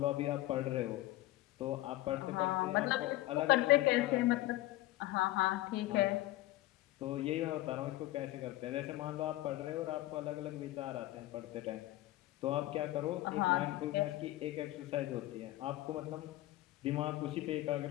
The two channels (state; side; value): quieter; right; 16.9 dB